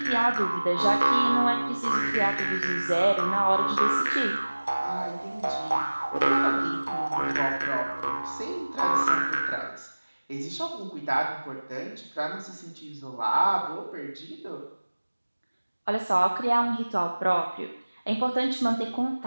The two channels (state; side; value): inverted; both; correlation -1.00